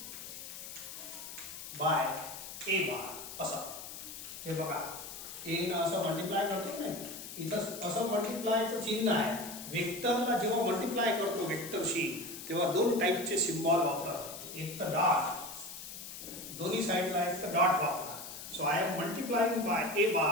बाय ए बार असं. हे बघा ए न असं मल्टिप्लाय करतो नाही, इथं असं मल्टिप्लायचं चिन्ह आहे. वेक्टरला जेव्हा मल्टिप्लाय करतो वेक्टरशी तेव्हा दोन टाईपचे सिम्बॉल वापरा. एक तर डॉट, दोन्ही साइडला एक तर डॉट वापरा. So I am multiplying by a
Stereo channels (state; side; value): noise; left; hiss, 11 dB below the sound